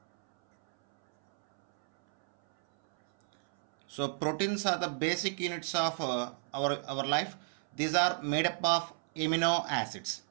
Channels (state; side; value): silent; left; 56 dB below the other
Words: So proteins are the basic units of our life. These are made up of amino acids.